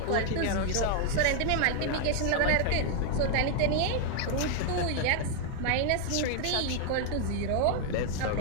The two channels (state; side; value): different; both; correlation 0.00